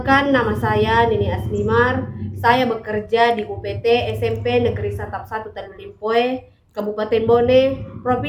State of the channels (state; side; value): identical; both; correlation 1.00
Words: nama saya Nini Asmimar. Saya bekerja di UPT SMP Negeri Satap 1 Tanulimpoe, Kabupaten Bone,